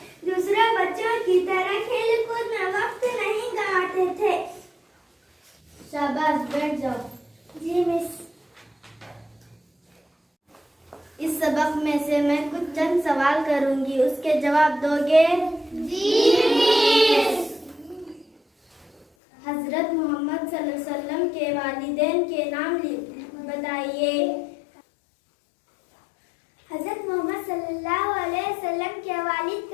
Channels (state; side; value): drops out; right; at 19.1 s